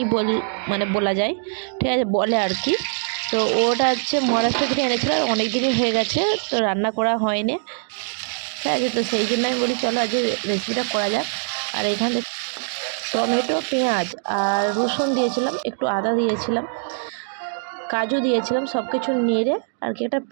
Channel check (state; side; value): silent; left; digital silence